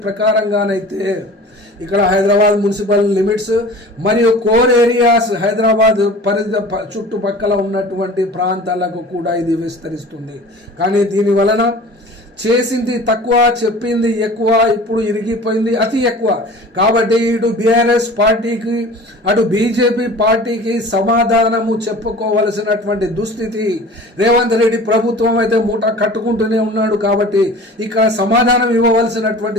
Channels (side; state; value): both; normal; correlation 0.41